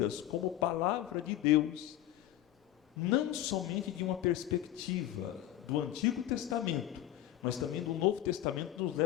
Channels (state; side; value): quieter; right; 13.3 dB